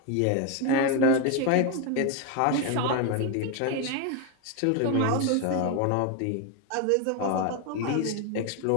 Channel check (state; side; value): different; both; correlation 0.01